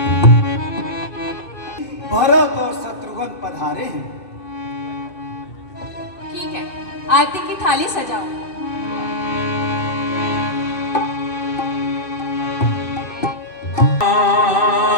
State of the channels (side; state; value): right; late; 2.6 ms